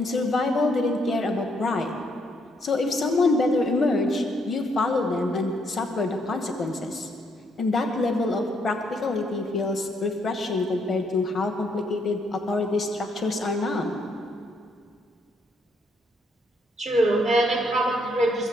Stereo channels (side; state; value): both; normal; correlation 0.72